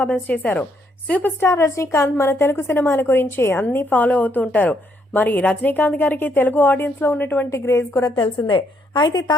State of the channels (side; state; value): both; normal; correlation 0.73